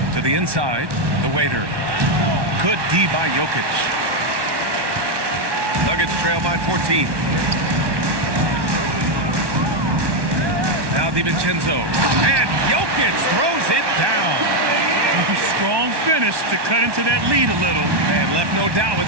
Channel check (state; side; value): late; left; 1.1 ms